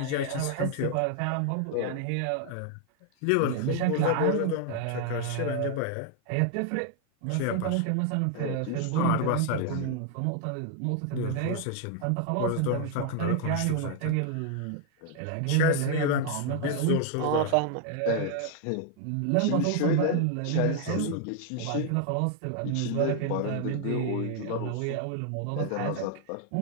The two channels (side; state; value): both; different; correlation 0.00